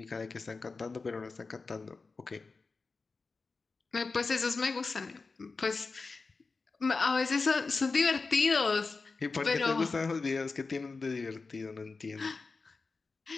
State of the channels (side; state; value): right; quieter; 4.1 dB